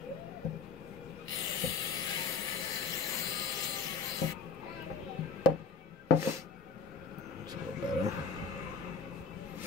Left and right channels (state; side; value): quieter; right; 5.0 dB